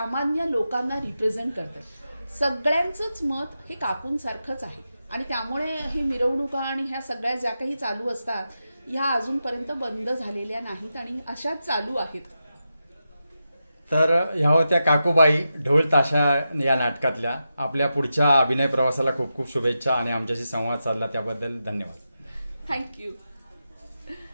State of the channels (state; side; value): inverted; both; correlation -0.89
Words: लोकांना रिप्रेझेंट करतं. सगळ्यांचंच मत हे काकूंसारखंच आहे आणि त्यामुळे ही मिरवणुका आणि ह्या सगळ्या ज्या काही चालू असतात ह्या अजूनपर्यंत बंद झालेल्या नाहीत आणि अशाच चालू आहेत. तर ह्या होत्या काकूबाई ढोल ताशा या नाटकातल्या. आपल्या पुढच्या अभिनय प्रवासाला खूप खूप शुभेच्छा आणि आमच्याशी संवाद साधला त्याबद्दल धन्यवाद. थँक्यू.